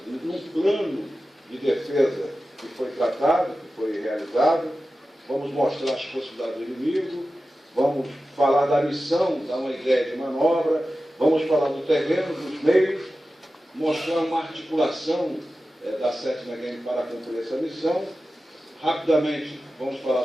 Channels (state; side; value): normal; both; correlation 0.94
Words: num plano de defesa que foi tratado, que foi realizado. Vamos mostrar as possibilidades do inimigo, vamos falar da missão, dar uma ideia de manobra, vamos falar do terreno, dos meios, mostrar uma articulação da 7ª GEM para cumprir essa missão. Rapidamente vamos